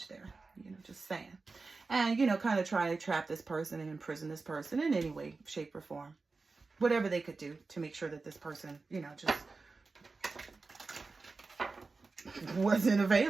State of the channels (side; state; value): left; quieter; 4.0 dB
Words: there. You know, just saying. And, you know, kind of try to trap this person and imprison this person in any way, shape, or form. Whatever they could do to make sure that this person, you know, just wasn't